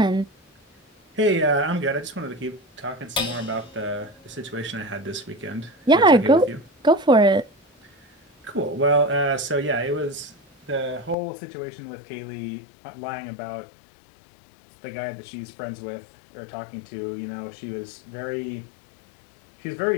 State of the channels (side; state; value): right; drops out; at 11.2 s